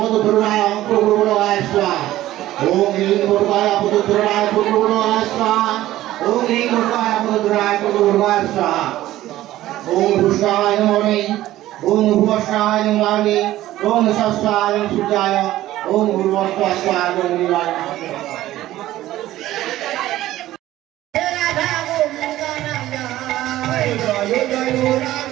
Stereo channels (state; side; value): quieter; left; 14.9 dB